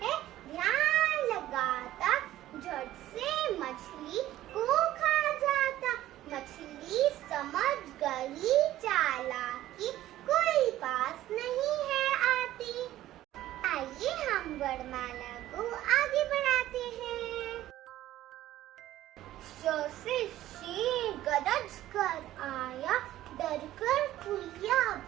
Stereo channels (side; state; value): left; quieter; 14.2 dB